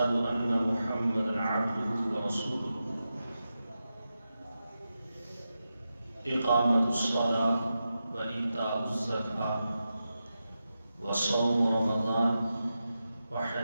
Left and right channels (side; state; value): both; inverted; correlation -0.90